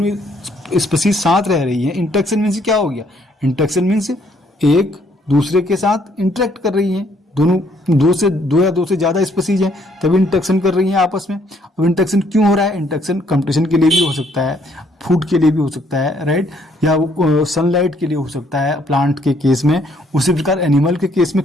ही स्पीसीज साथ रह रही है। इंटरेक्शन मीन्स क्या हो गया, इंटरेक्शन मीन्स एक दूसरे के साथ इंटरेक्ट कर रही है, दोनों दो या दो से ज्यादा स्पीसीज हैं तभी इंटरेक्शन कर रही हैं आपस में। अब इंटरेक्शन क्यों हो रहा है, इंटरेक्शन कंपटीशन के लिए भी हो सकता है, फूड के लिए भी हो सकता है, राइट, या सनलाइट के लिए हो सकता है प्लांट के केस में, उसी प्रकार एनिमल के केस में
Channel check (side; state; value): both; normal; correlation 0.67